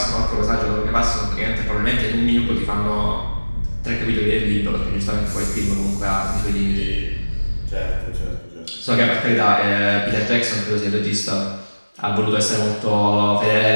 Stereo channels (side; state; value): both; inverted; correlation -1.00